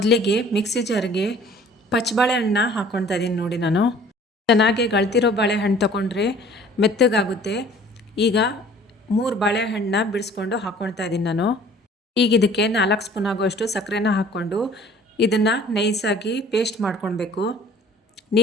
ಮಿಕ್ಸಿ ಜಾರ್ಗೆ ಪಚ್ಚಬಾಳೆಹಣ್ಣನ್ನ ಹಾಕ್ಕೊಳ್ತಾ ಇದ್ದೀನಿ. ನೋಡಿ, ನಾನು ಚೆನ್ನಾಗಿ ಗಳ್ತಿರೋ ಬಾಳೆಹಣ್ಣು ತೊಗೊಂಡ್ರೆ ಮೆತ್ತಗಾಗುತ್ತೆ. ಈಗ 3 ಬಾಳೆಹಣ್ಣನ್ನ ಬಿಡಿಸ್ಕೊಂಡು ಹಾಕ್ಕೊಳ್ತಾ ಇದ್ದೀನಿ ನಾನು. ಈಗ ಇದಕ್ಕೆ 4 ಸ್ಪೂನ್ ಆಗುವಷ್ಟು ಸಕ್ಕರೆನ ಹಾಕ್ಕೊಂಡು ಇದನ್ನು ನೈಸಾಗಿ ಪೇಸ್ಟ್ ಮಾಡ್ಕೊಳ್ಬೇಕು.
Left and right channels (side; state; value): both; normal; correlation 0.51